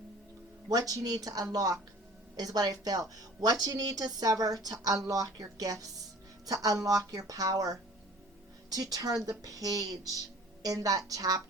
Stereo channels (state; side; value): normal; both; correlation 0.47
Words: What you need to unlock is what I feel. What you need to sever to unlock your gifts, to unlock your power, to turn the page in that